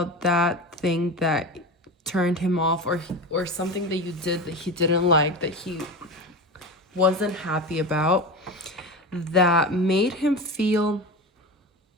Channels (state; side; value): normal; both; correlation 0.25